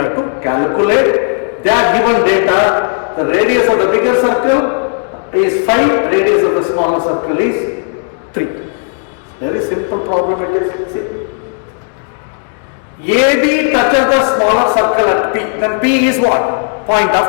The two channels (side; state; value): right; silent; 56 dB below the other